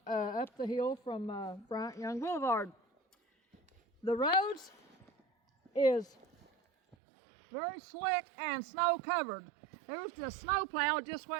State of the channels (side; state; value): left; drops out; at 7.0 s